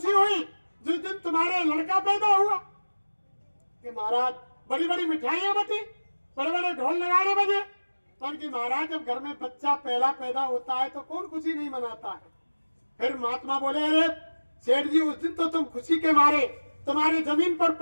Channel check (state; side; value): inverted; both; correlation -1.00